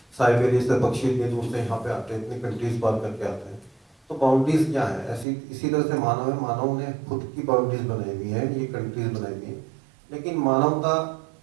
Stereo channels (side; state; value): left; drops out; at 5.2 s